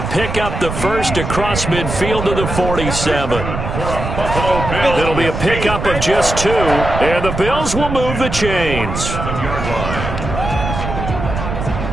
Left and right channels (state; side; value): noise; right; rumble, 5 dB below the sound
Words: pick up the first across midfield to the 47. It'll be a pickup of just 2. And the Bills will move the chains.